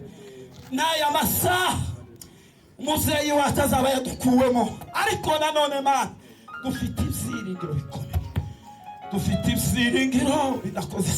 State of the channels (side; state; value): both; identical; correlation 1.00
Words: n'aya masaha umuzeyi wacu azaba yadukuwemo, ariko nanone Mana dufite ibyiringiro bikomeye, dufite ibyiringiro bidakoze